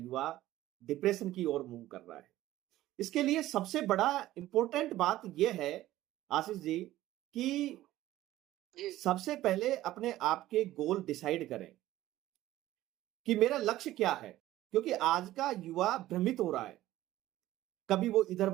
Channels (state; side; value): quieter; left; 15.1 dB